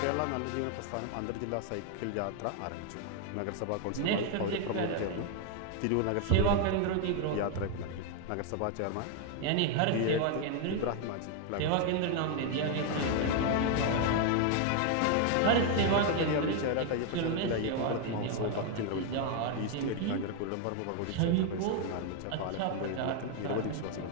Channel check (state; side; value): different; both; correlation 0.00